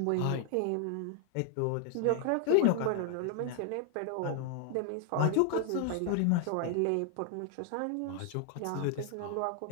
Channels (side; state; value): both; different; correlation 0.00